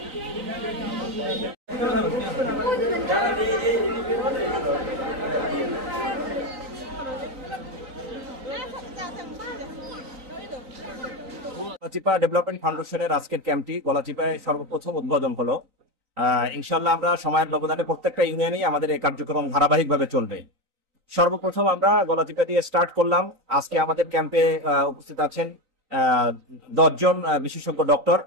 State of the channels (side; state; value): left; late; 3.9 ms